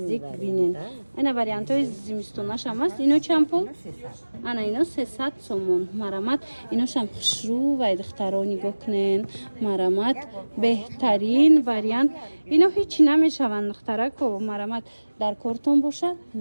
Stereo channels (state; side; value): inverted; both; correlation -1.00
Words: бинен ина вариантои зимистонашам аст ино чанд пул ана ино 300 сомон марамат иношам хушрӯ вай духтаро нигоҳ кунен марамат беҳтарин вариант ино ҳечи намешаванд духтарако марамат дар кортон боша